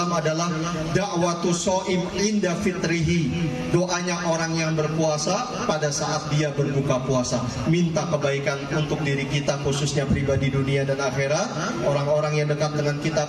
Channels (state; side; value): identical; both; correlation 1.00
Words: adalah da'watu shaim inda fitrihi. Doanya orang yang berpuasa pada saat dia berbuka puasa, minta kebaikan untuk diri kita, khususnya pribadi dunia dan akhirat, orang-orang yang dekat dengan